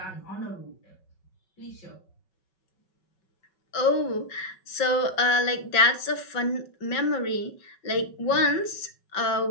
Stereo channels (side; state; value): right; late; 5.3 ms